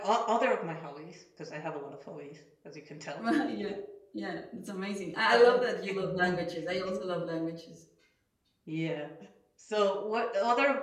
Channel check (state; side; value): identical; both; correlation 1.00